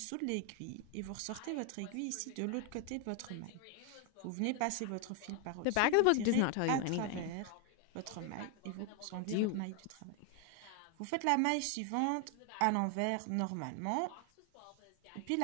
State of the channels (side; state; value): both; different; correlation 0.00